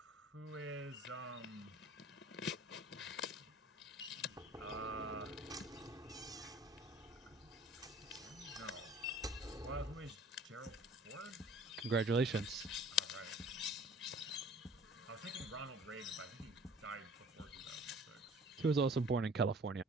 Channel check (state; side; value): normal; both; correlation 0.48